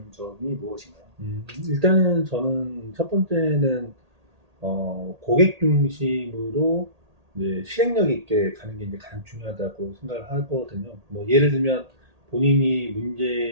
점이 무엇인가요? 일단은 저는 첫 번째는 고객 중심으로 이제 실행력 있게 가는 게 이제 가장 중요하다고 생각을 하거든요. 뭐 예를 들면 본인이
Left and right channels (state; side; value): late; left; 1.8 ms